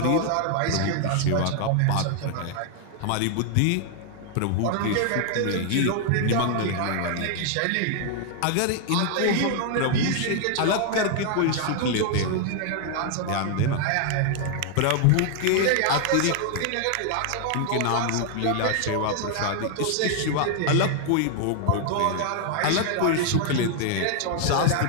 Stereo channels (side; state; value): both; different; correlation 0.00